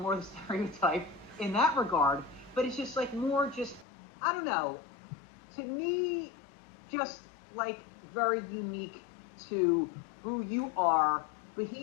the stereotype in that regard, but it's just like more just, I don't know, to me, just like very unique to who you are.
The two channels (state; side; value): drops out; right; at 3.9 s